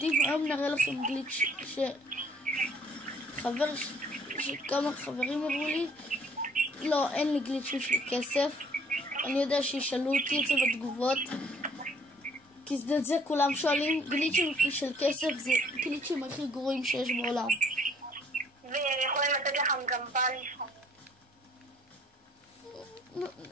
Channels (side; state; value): both; normal; correlation 0.60